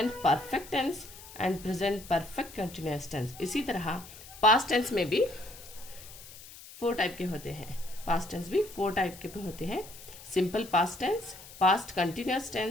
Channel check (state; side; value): noise; left; hiss, 17 dB below the sound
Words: perfect tense and present perfect continuous tense. इसी तरह पास्ट टेंस में भी फोर टाइप के होते हैं। पास्ट टेंस भी फोर टाइप के होते हैं। Simple past tense, past continuous